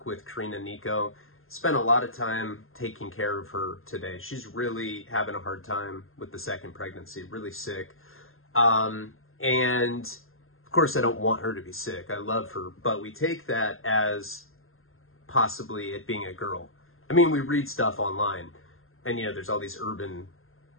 with Karina and Nico. Spent a lot of time taking care of her today. She's really having a hard time with the second pregnancy, really sick. And of course, I don't want her to be sick. I love her, but we take that as possibly it being a girl. I mean, we read stuff online, and there's all these urban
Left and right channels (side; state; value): right; late; 0.61 ms